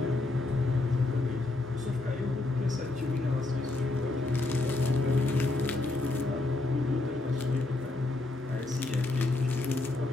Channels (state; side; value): quieter; right; 3.0 dB